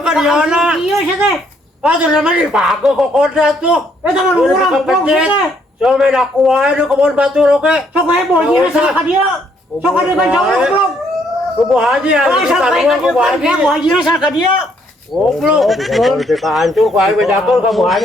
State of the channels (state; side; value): normal; both; correlation 0.69